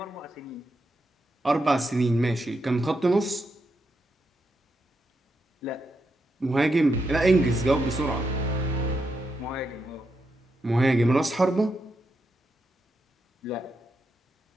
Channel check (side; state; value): both; normal; correlation 0.84